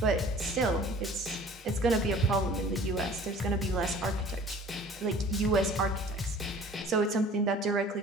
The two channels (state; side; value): normal; both; correlation 0.48